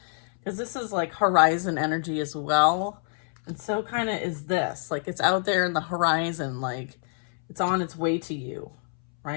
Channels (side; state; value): right; silent; 61 dB below the other